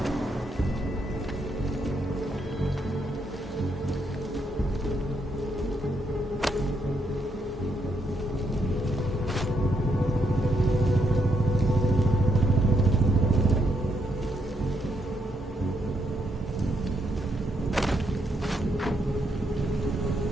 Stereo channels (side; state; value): both; normal; correlation 0.77